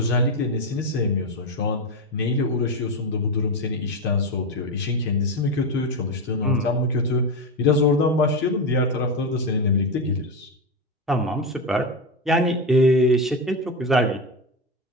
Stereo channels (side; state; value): both; normal; correlation 0.14